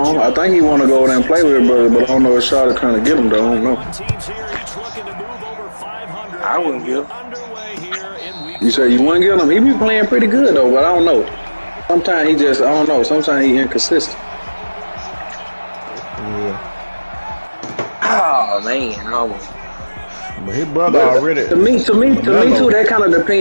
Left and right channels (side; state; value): both; inverted; correlation -1.00